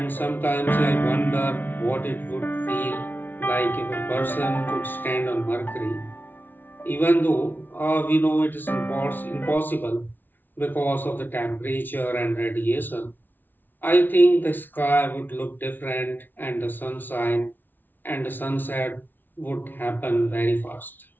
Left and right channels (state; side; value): late; right; 0.089 ms